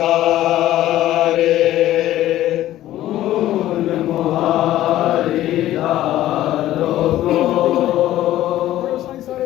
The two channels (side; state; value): right; quieter; 14.0 dB